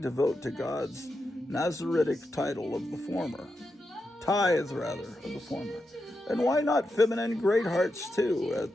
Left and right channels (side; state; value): both; normal; correlation 0.87